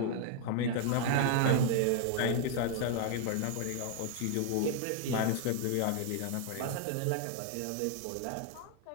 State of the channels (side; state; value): both; different; correlation 0.00